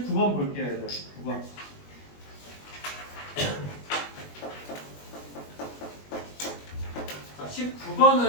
볼게요, 얘들. 19번. 자,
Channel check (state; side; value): late; right; 21 ms